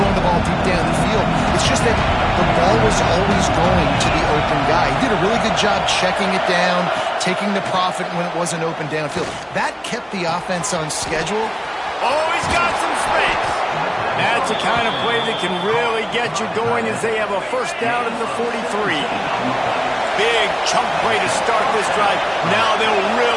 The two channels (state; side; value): identical; both; correlation 1.00